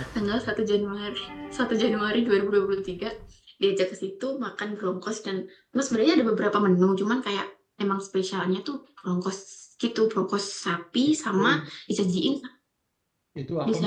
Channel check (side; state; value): both; identical; correlation 1.00